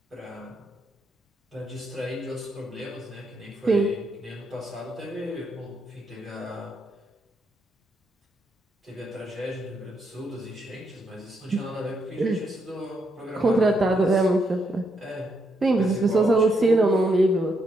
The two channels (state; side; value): normal; both; correlation 0.78